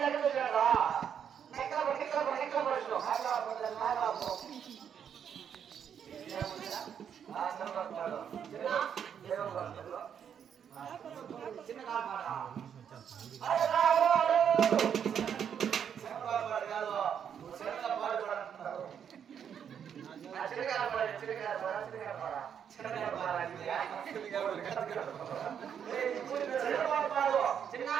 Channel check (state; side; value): quieter; left; 8.2 dB